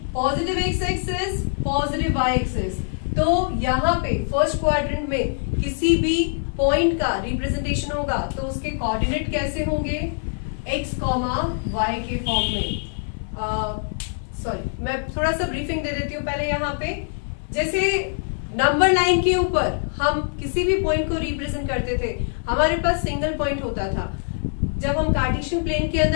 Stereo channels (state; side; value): silent; right; digital silence